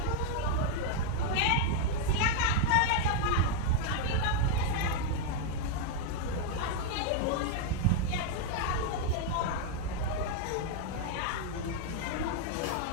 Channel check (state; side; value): different; both; correlation 0.00